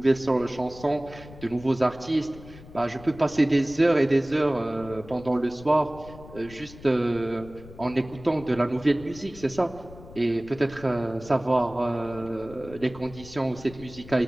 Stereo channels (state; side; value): noise; left; rumble, 18 dB below the sound